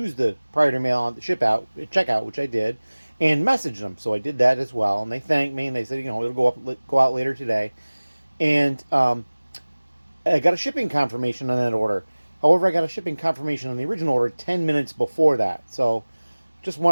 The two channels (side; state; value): both; inverted; correlation -1.00